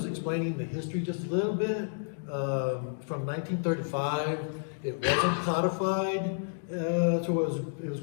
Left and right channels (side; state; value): right; silent; digital silence